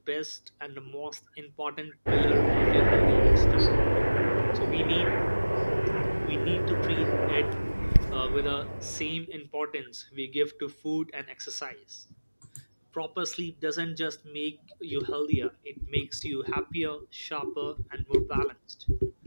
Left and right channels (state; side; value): inverted; both; correlation -1.00